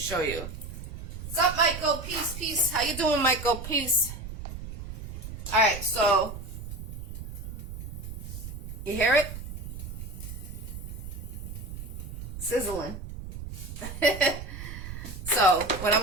you. What's up, Michael? Peace, peace. How you doing, Michael? Peace. All right, so you hear it? Sizzling. So what I'm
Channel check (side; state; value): right; noise; rumble, 9 dB below the sound